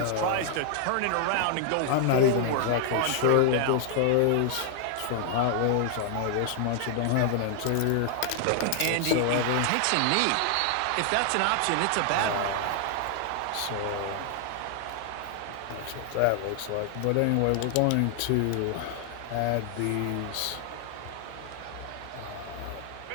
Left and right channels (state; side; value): different; both; correlation 0.00